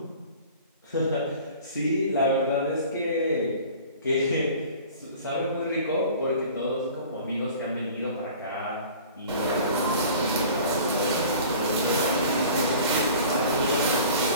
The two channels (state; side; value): inverted; both; correlation -0.44